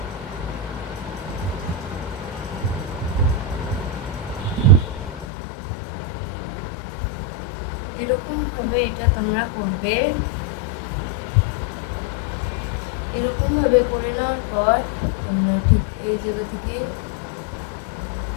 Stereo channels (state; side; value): drops out; right; at 5.2 s